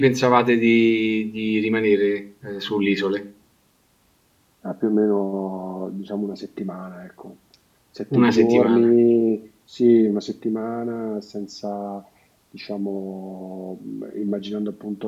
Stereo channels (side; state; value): both; identical; correlation 1.00